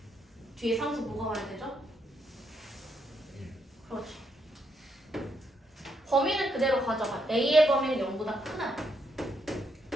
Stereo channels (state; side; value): normal; both; correlation 0.77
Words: 뒤에 상수 뭐가 와야 되죠? 그렇지. 범위는 그대로 가져가. a의 범위는 0보다 크다.